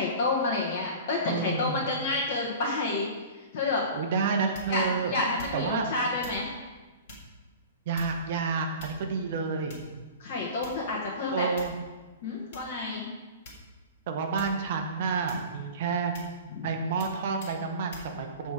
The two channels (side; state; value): both; inverted; correlation -0.37